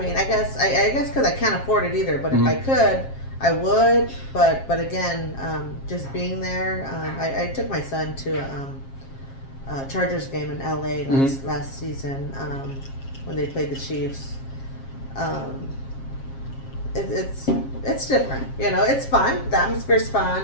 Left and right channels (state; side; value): late; right; 7.4 ms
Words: I guess because I can't afford it either. But if I could, I would, but again, just being there. I took my son to a Chargers game in LA last season when they played the Chiefs. Um, it's different, you know. It's fun. The atmosphere's fun,